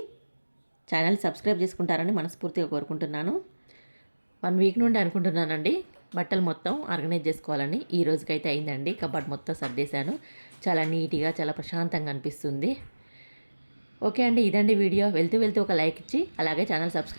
ఛానల్ సబ్స్క్రైబ్ చేసుకుంటారని మనస్ఫూర్తిగా కోరుకుంటున్నాను. 1 వీక్ నుండి అనుకుంటున్నానండి బట్టలు మొత్తం ఆర్గనైజ్ చేసుకోవాలని. ఈ రోజుకైతే అయిందండి. కబోర్డ్ మొత్తం సర్దేశాను. చాలా నీట్గా చాలా ప్రశాంతంగా అనిపిస్తుంది. ఓకే అండి, ఇదండి వీడియో. వెళ్తూ ఒక లైక్ ఇచ్చి అలాగే ఛానల్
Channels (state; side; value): inverted; both; correlation -1.00